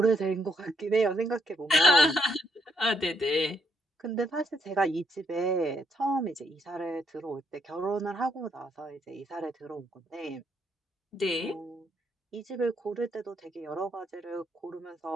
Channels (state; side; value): normal; both; correlation 0.73